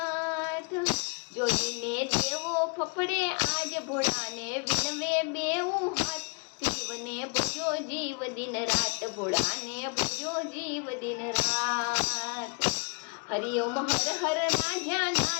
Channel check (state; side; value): quieter; right; 34.5 dB